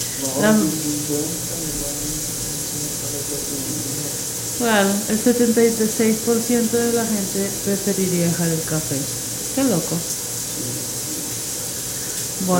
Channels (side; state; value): both; identical; correlation 1.00